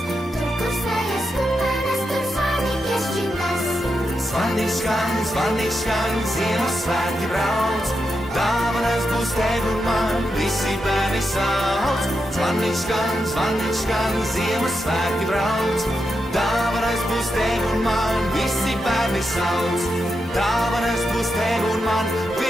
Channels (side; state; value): both; normal; correlation 0.86